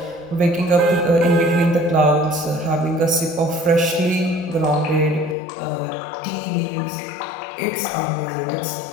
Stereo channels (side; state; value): right; drops out; at 5.4 s